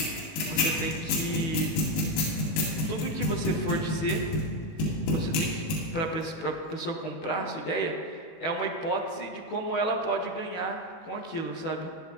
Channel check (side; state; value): right; late; 18 ms